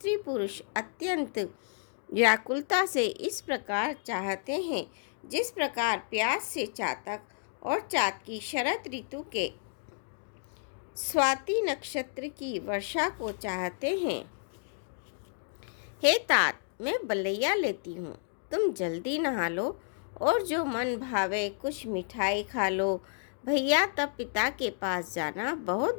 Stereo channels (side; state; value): right; silent; digital silence